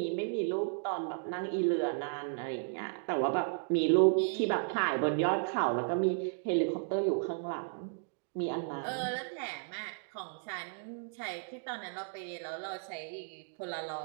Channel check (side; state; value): left; silent; digital silence